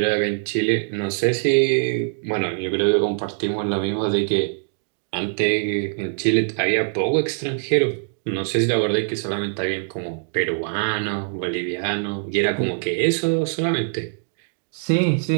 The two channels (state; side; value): silent; left; digital silence